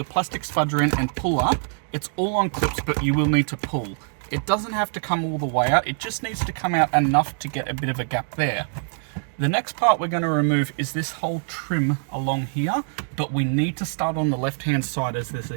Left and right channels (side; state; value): left; silent; 63 dB below the other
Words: plastic spudger in and pull up. It's all on clips, but you will need to pull. It doesn't have to come all the way out, it just needs to come out enough to get a bit of a gap there. The next part we're going to remove is this whole trim along here, but we need to start on the left hand side as there's a